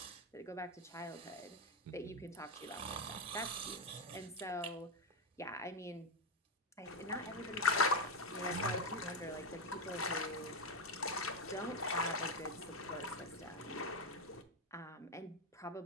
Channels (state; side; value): normal; both; correlation 0.08